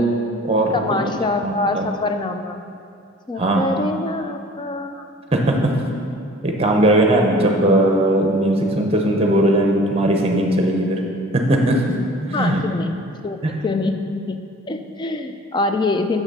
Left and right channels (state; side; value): normal; both; correlation 0.47